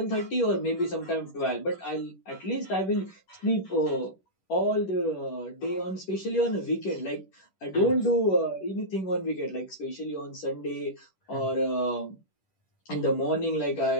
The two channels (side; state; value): right; late; 10 ms